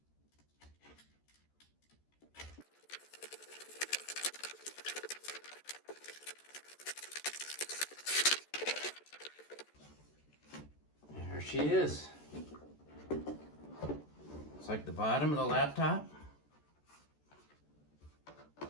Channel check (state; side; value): late; right; 14 ms